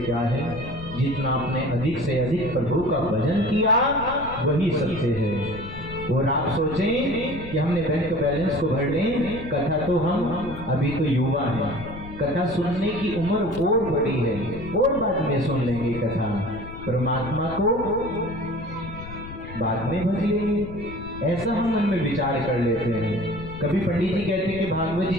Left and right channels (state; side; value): noise; left; rumble, 12 dB below the sound